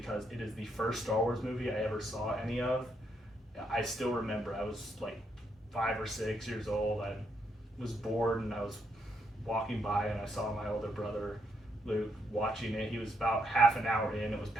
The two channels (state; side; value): normal; both; correlation 0.77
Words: it is the first Star Wars movie I ever saw any of. I still remember I was like 5 or 6 years old. I was bored and I was walking by and I saw my older brother Luke watching it. He was about half an hour in. It was